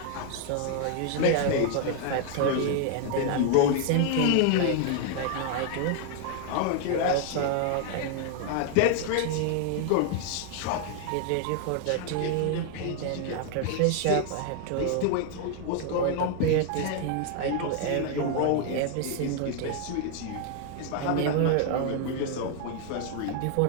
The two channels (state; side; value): different; both; correlation 0.00